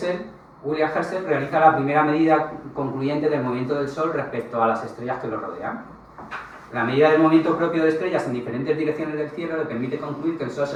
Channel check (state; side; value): identical; both; correlation 1.00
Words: William Herschel realiza la primera medida concluyente del movimiento del Sol respecto a las estrellas que lo rodean. La medida del movimiento propio de estrellas en diferentes direcciones del cielo le permite concluir que el Sol